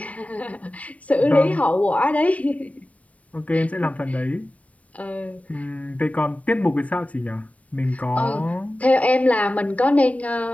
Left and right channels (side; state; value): right; late; 0.066 ms